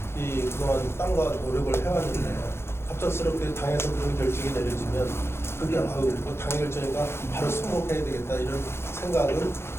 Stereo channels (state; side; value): late; right; 0.12 ms